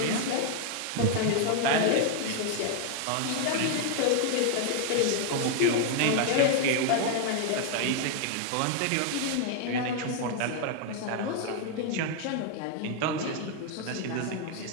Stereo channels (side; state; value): both; different; correlation 0.00